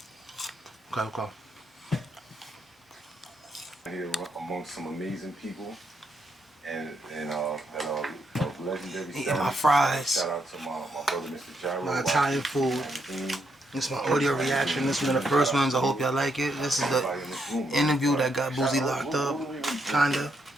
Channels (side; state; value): both; normal; correlation 0.78